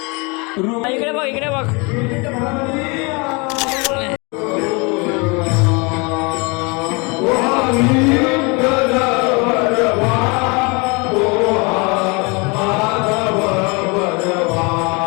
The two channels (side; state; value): right; quieter; 29.5 dB